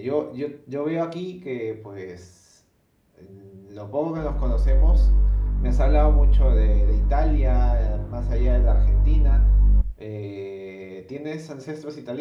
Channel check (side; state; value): both; identical; correlation 1.00